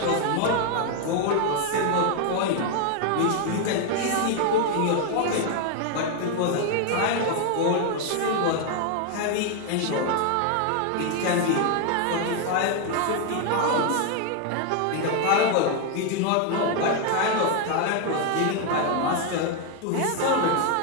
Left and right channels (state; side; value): different; both; correlation 0.01